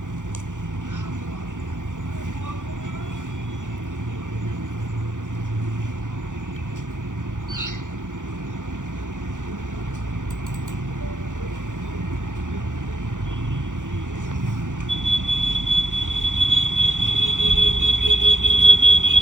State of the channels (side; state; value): left; late; 0.87 ms